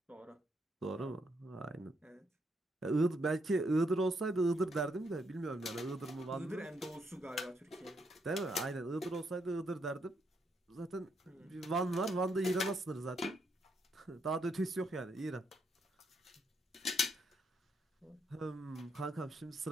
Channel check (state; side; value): normal; both; correlation 0.76